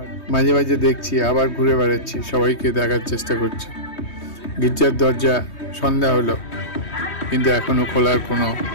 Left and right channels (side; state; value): right; late; 3.2 ms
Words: মাঝে মাঝে দেখছি, আবার ঘুরে বেড়াচ্ছি, সবাইকে দেখার চেষ্টা করছি। গির্জার দরজা সন্ধ্যা হলো, কিন্তু এখনো খোলার কোনো